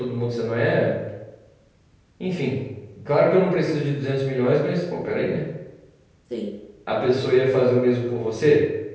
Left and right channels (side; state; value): both; identical; correlation 1.00